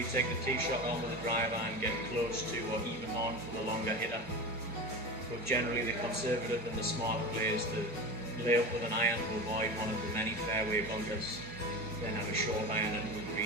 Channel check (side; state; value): both; normal; correlation 0.27